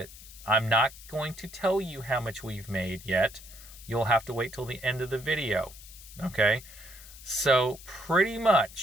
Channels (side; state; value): left; noise; hiss, 17 dB below the sound